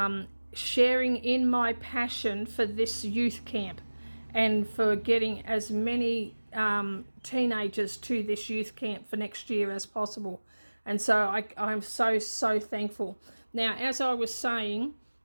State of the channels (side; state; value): both; inverted; correlation -1.00